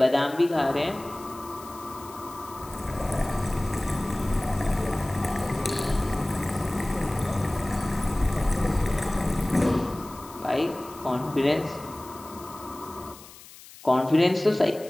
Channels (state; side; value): noise; left; hiss, 19 dB below the sound